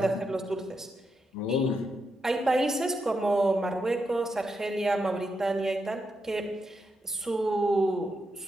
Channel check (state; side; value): normal; both; correlation 0.84